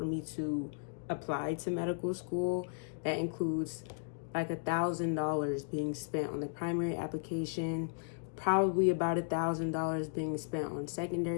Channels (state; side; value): silent; right; digital silence